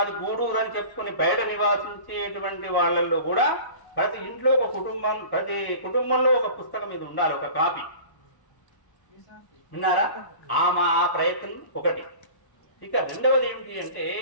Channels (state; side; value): late; right; 1.1 ms